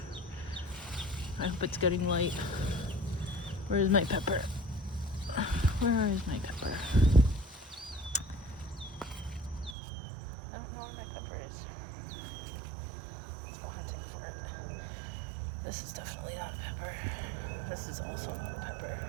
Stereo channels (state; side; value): drops out; left; at 9.8 s